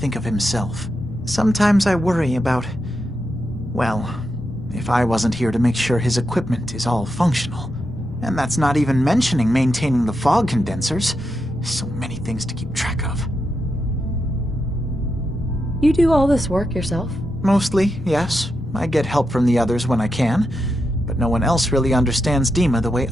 of himself. Sometimes I worry about... well, if I wasn't here to make sure his equipment is all functional. And that's not even mentioning maintaining the fog condensors. So many things to keep track of. You do all this work yourself? Mostly, yes. I get help from the others when I can, but no one else really understands Dima the way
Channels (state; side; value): normal; both; correlation 0.85